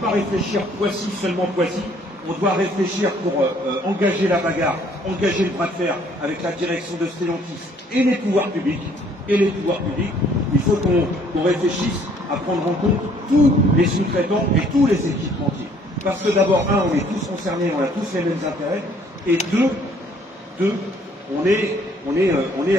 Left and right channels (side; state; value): both; normal; correlation 0.61